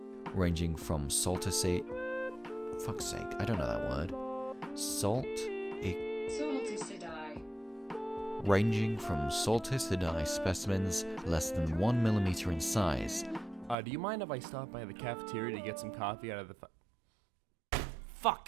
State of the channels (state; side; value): drops out; left; at 13.8 s